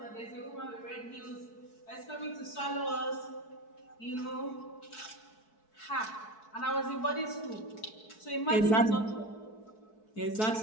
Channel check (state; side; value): late; right; 4.6 ms